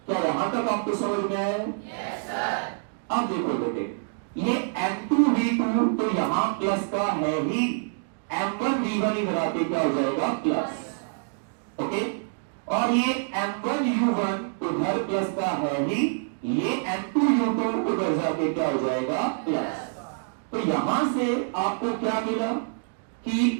क्या यहां तक आपको समझ में आया? Yes sir. अब देखो बेटे, ये m2v2 तो यहां प्लस का है ही, m1v1 ही लगाते क्या हो जाएगा? प्लस। ओके, और ये m1u1 उधर प्लस का है ही, ये m2u2 उधर जाके क्या हो जाएगा? प्लस। तो यहां से आपको क्या मिला कि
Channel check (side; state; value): left; silent; digital silence